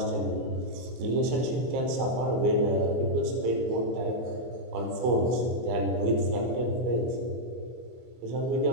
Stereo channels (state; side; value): late; left; 24 ms